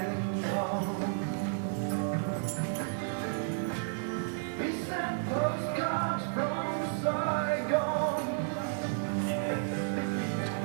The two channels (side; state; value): left; silent; 56 dB below the other